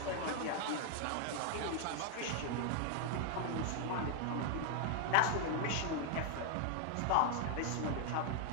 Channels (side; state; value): both; different; correlation 0.00